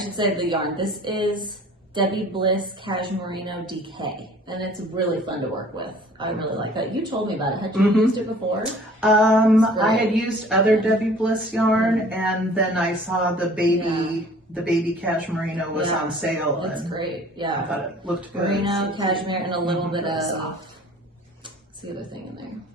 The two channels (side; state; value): both; normal; correlation 0.50